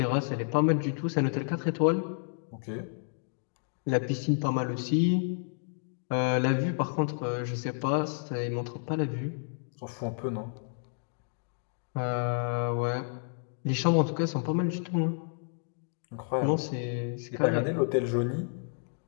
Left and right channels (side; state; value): right; silent; digital silence